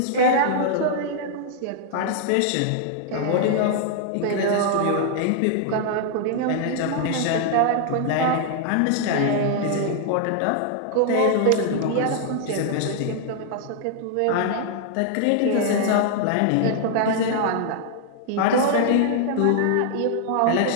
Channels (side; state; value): both; different; correlation -0.01